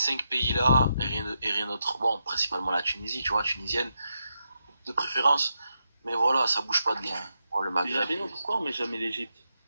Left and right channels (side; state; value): both; inverted; correlation -0.85